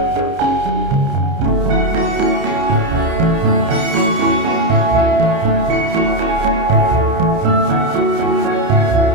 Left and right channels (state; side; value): late; left; 30 ms